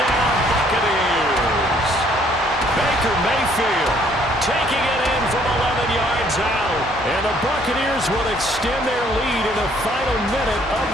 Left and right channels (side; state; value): both; normal; correlation 0.63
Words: Buccaneers. Baker Mayfield taking it in from 11 yards out. And the Buccaneers will extend their lead in the final minute of